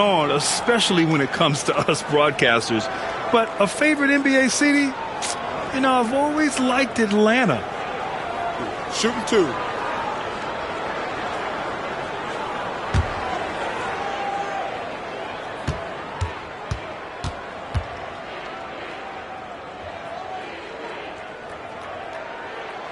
especially when it comes to us broadcasters. But a favorite NBA city? You know, I've always liked Atlanta. Shooting 2.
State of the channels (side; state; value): both; identical; correlation 1.00